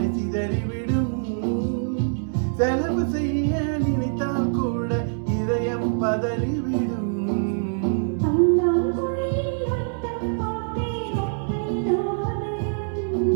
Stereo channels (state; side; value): silent; left; 61 dB below the other